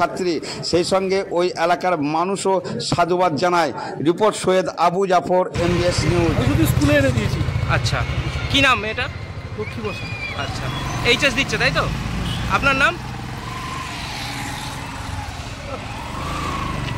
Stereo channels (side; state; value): both; identical; correlation 1.00